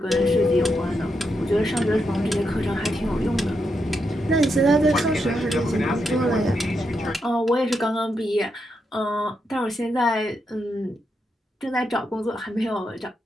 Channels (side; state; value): both; normal; correlation 0.83